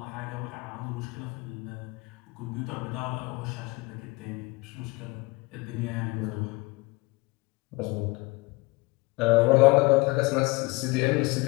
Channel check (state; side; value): quieter; right; 24.3 dB